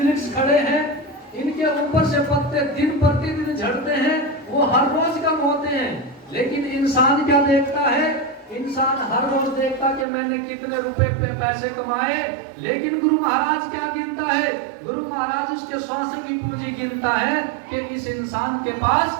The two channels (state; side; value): drops out; left; at 10.1 s